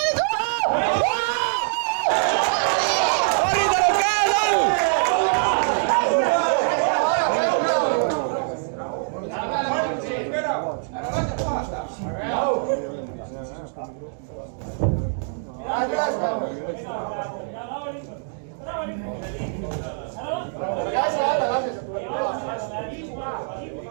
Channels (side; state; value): left; silent; digital silence